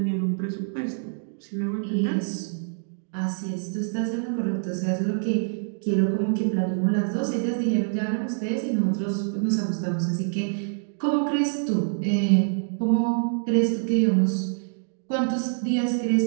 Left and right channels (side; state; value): left; silent; digital silence